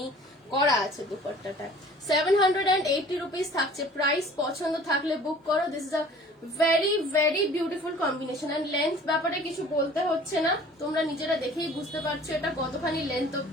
করা আছে দুপাট্টাটা। 780 রুপিস থাকছে প্রাইস। পছন্দ থাকলে বুক করো। This is a very very beautiful combination. And length ব্যাপারে কিছু বলতে হচ্ছে না, তোমরা নিজেরা দেখেই বুঝতে পারছো এটা কতখানি লেন্থ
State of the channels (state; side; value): normal; both; correlation 0.49